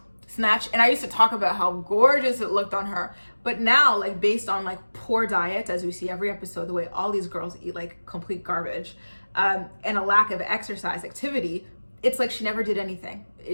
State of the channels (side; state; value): both; inverted; correlation -1.00